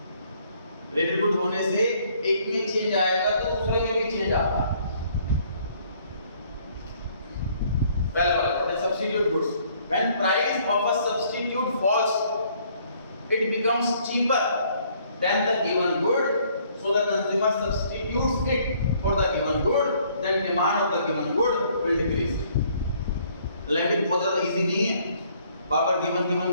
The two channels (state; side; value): inverted; both; correlation -0.63